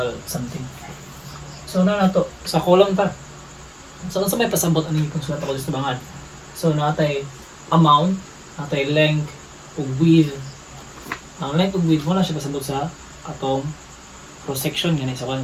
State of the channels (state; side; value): identical; both; correlation 1.00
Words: something. So na to sa column ta. So unsa may pasabot ani kung sulat ako sa bangad. So natay amount, natay length ug width. Ang length ug width mo na siya pasabot sa atong cross section gani sa kan